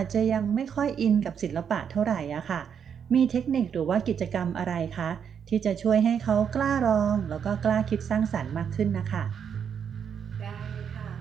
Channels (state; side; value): quieter; left; 7.6 dB